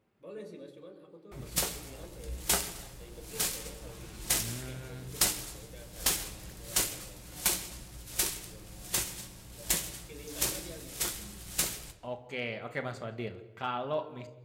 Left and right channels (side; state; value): both; identical; correlation 1.00